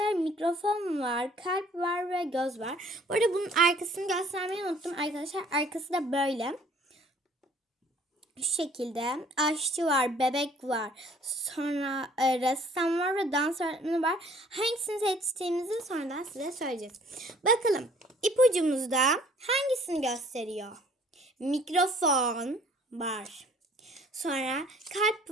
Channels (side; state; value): both; normal; correlation 0.56